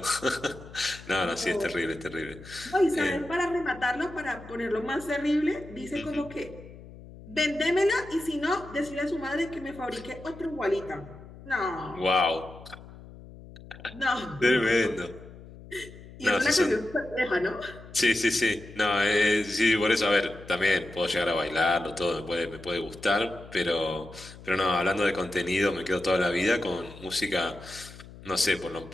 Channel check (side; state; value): left; noise; hum, 17 dB below the sound